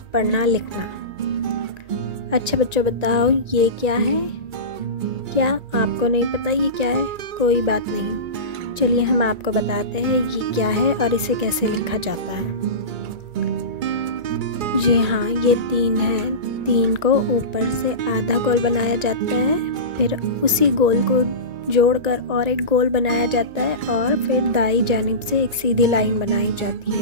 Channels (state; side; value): late; left; 1.8 ms